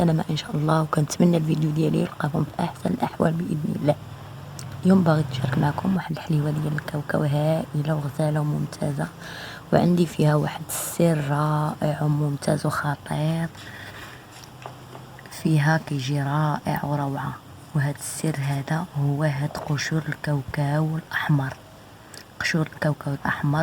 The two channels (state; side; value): identical; both; correlation 1.00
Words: ان شاء الله، وكنتمنى الفيديو ديالي يلقاكم في احسن الاحوال باذن الله. اليوم باغي نشارك معكم واحد الحليوه ديال الكاوكاو هائله وغزاله وممتازه، وعندي فيها واحد السر رائع وممتاز وخطير، فيها كيجي رائع وروعه. وهذا السر هذا هو هاد قشور الكاوكاو الاحمر. قشور الكاوكاو